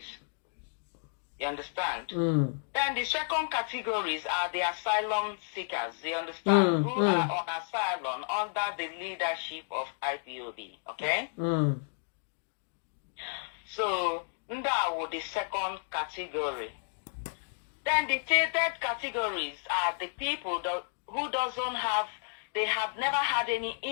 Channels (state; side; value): silent; right; digital silence